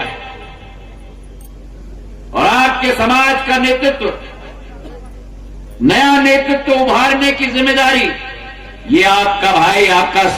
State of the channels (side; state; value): both; identical; correlation 1.00